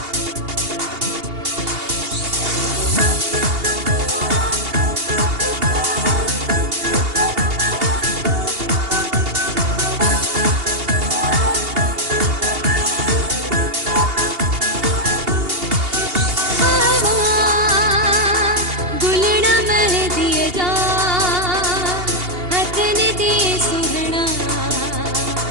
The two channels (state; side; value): late; left; 2.8 ms